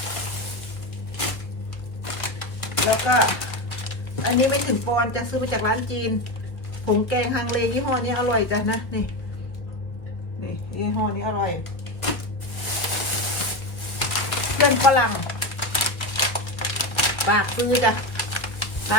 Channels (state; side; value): late; right; 1.0 ms